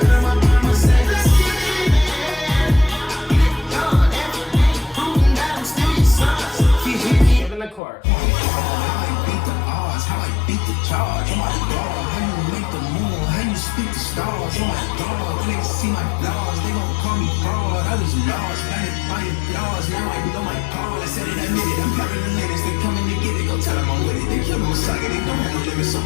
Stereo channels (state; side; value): drops out; right; at 7.8 s